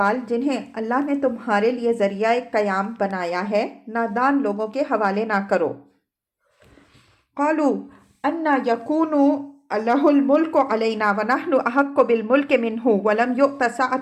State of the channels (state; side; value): identical; both; correlation 1.00